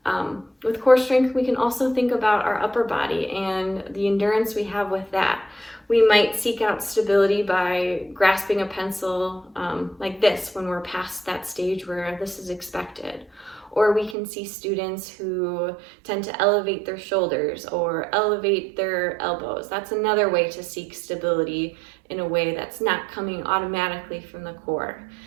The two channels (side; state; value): left; drops out; at 14.2 s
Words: With core strength, we can also think about our upper body and the endurance we have with that. We might seek out stability by grasping a pencil like this when we're past that stage where this is expected. Or we can see students who tend to elevate their shoulders or elevate their elbows. That's another way to seek stability in a way that's not coming automatically from the core.